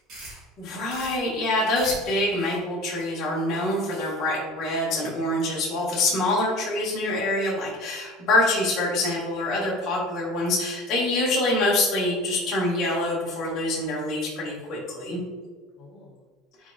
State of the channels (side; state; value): both; normal; correlation 0.39